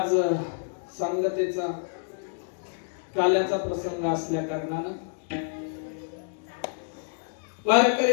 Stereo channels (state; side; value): silent; right; digital silence